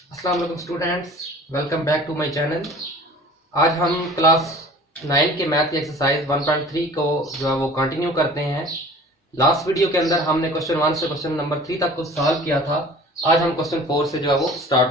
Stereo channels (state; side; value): normal; both; correlation 0.45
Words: अस्सलाम वालेकुम students, welcome back to my channel. आज हम क्लास 9 के मैथ की एक्सरसाइज 1.3 को जो है वो कंटिन्यू करते हैं। लास्ट वीडियो के अंदर हमने क्वेश्चन 1 से क्वेश्चन नंबर 3 तक को सॉल्व किया था। आज हम क्वेश्चन 4 से जो है वो